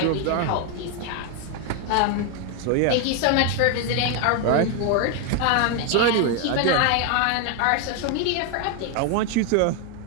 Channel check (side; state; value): both; different; correlation 0.01